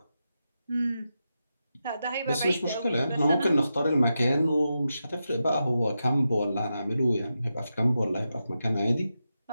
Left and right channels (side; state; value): both; inverted; correlation -0.88